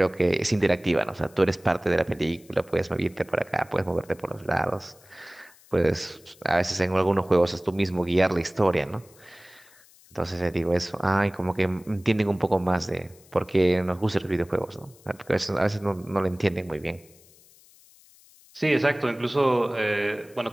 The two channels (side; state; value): left; noise; hiss, 27 dB below the sound